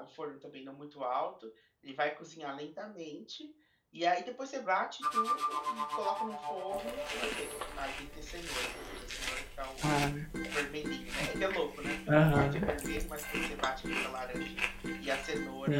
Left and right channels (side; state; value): both; identical; correlation 1.00